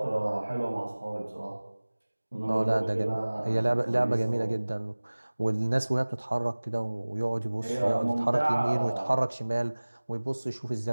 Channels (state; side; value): inverted; both; correlation -1.00